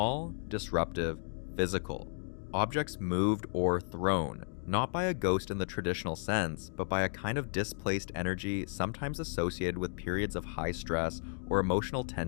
disruptive, physical. Objects moved or thrown, not by a ghost in the traditional sense, but by a kind of displaced energy sometimes associated with periods of high stress or emotional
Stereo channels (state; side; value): silent; right; digital silence